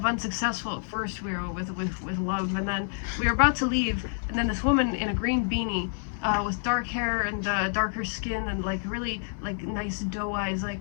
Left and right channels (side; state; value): right; silent; 58 dB below the other